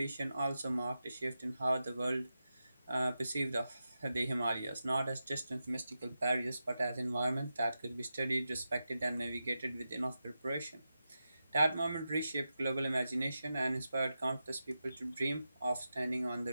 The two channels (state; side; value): inverted; both; correlation -0.90